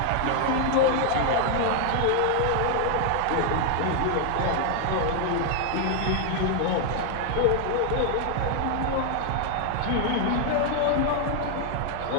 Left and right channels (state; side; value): different; both; correlation 0.00